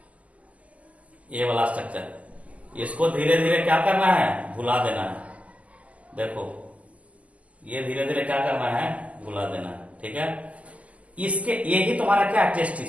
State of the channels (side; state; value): left; late; 0.069 ms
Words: ये वाला स्ट्रक्चर, इसको धीरे धीरे क्या करना है, भुला देना है। देखो ये धीरे धीरे क्या करना है, भुला देना है। ठीक है, इसके ये ही तुम्हारा क्या है,